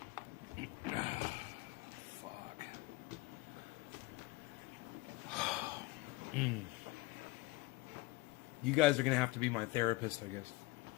you know? Fuck. You guys are gonna have to be my therapist, I guess.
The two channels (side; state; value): right; quieter; 21.1 dB